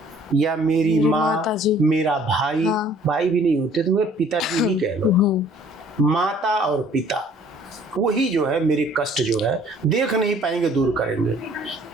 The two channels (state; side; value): normal; both; correlation 0.56